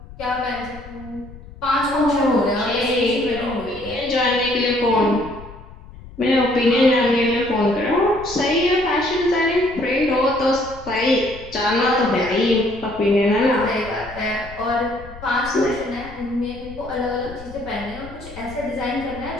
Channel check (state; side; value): noise; left; rumble, 17 dB below the sound